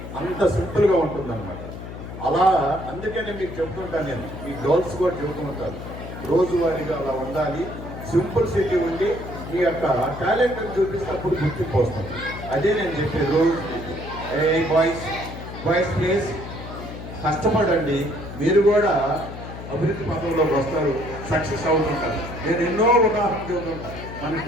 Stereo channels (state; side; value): noise; left; hum, 10 dB below the sound